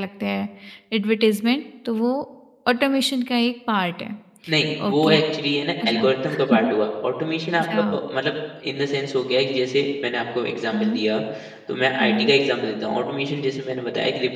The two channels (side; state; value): both; identical; correlation 1.00